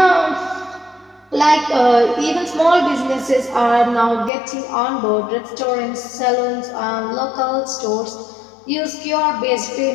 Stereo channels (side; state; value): right; drops out; at 4.3 s